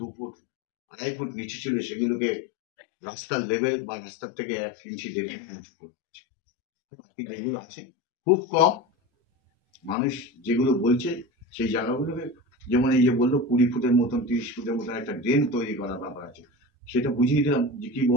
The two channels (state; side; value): normal; both; correlation 0.28